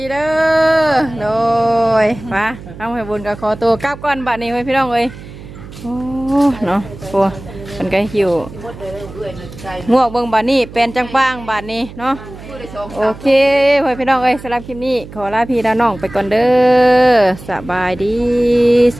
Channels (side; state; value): right; noise; hum, 15 dB below the sound